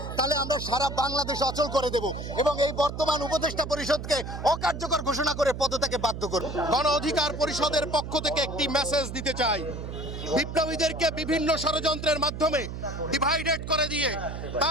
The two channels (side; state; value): right; noise; hum, 7 dB below the sound